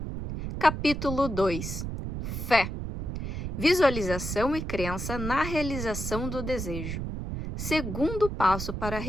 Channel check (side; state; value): right; noise; rumble, 5 dB below the sound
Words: Capítulo 2. Fé. Visualização e crença na realização do desejo. Segundo passo para a